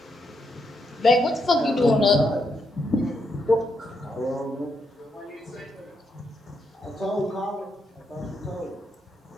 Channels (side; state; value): both; normal; correlation 0.79